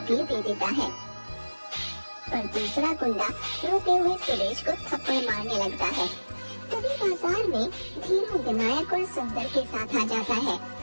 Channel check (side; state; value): both; inverted; correlation -1.00